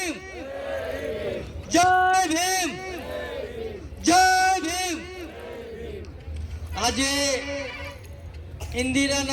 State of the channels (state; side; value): identical; both; correlation 1.00